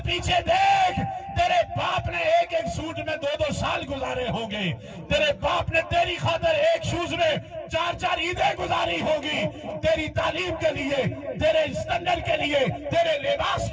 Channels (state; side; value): identical; both; correlation 1.00